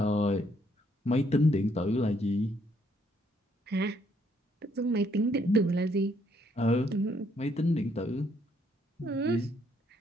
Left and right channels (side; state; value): both; normal; correlation 0.70